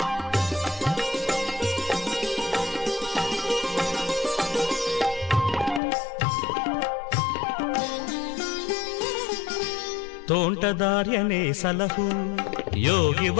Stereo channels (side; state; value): right; drops out; at 5.8 s